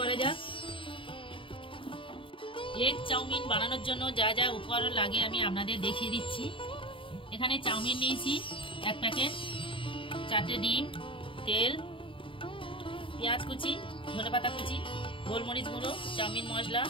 যাক। এগ চাউমিন বানানোর জন্য যা যা উপকরণ লাগে আমি আপনাদের দেখিয়ে দিচ্ছি। এখানে চাউমিন নিয়েছি 1 প্যাকেট, 4টে ডিম, তেল, পেঁয়াজ কুচি, ধনেপাতা কুচি, গোলমরিচ গুঁড়ো, চাউমিন মশলা,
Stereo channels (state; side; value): late; right; 0.25 ms